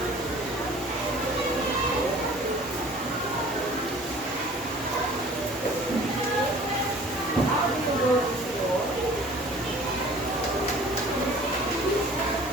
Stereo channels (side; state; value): both; normal; correlation 0.48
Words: How do you go to school?